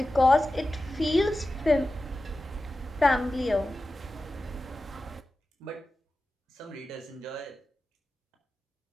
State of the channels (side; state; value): both; normal; correlation 0.94